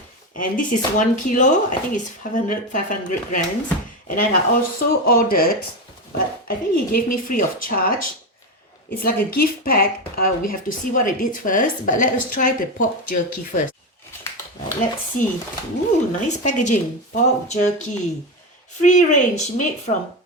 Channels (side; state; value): both; normal; correlation 0.15